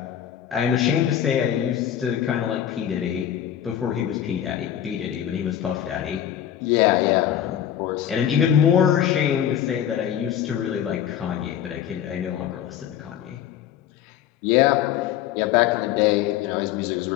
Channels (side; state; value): right; quieter; 10.4 dB